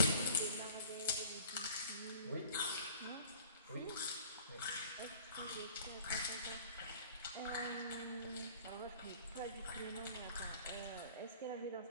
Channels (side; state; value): both; inverted; correlation -0.49